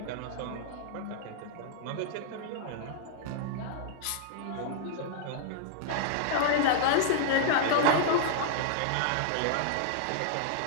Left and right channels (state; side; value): different; both; correlation -0.01